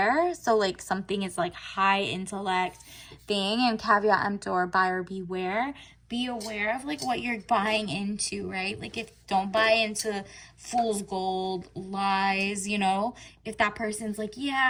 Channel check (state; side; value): identical; both; correlation 1.00